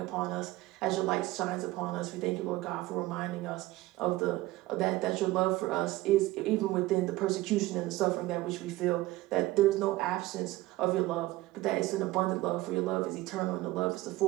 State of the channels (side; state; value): left; quieter; 18.1 dB